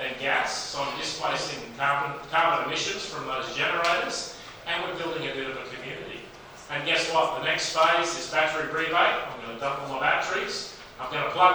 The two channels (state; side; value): identical; both; correlation 1.00